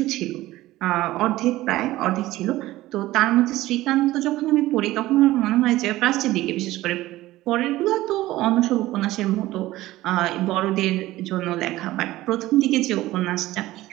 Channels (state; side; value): quieter; left; 16.7 dB